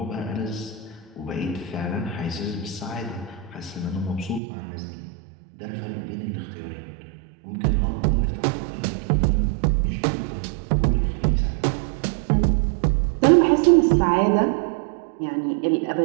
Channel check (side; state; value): left; drops out; at 4.4 s